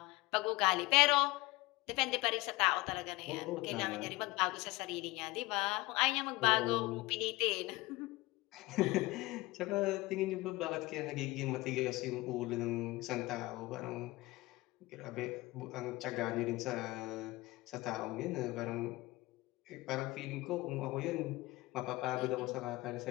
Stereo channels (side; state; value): right; quieter; 20.9 dB